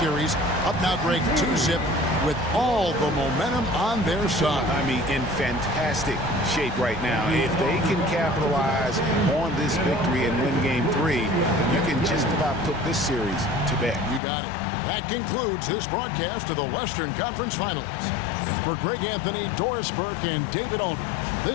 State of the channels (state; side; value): drops out; right; at 14.2 s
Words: Up now break 2-zip with all the momentum on their side. I mean, in fantastic shape right now. If they can capitalize on this victory and win Game 3, you can just about put this series to bed. You got it. That concludes this broadcast of the Western Conference Finals. For Greg Anthony, Doris Burke, and David Aldridge,